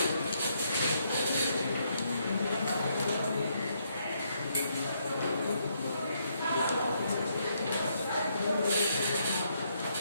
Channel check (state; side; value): inverted; both; correlation -0.74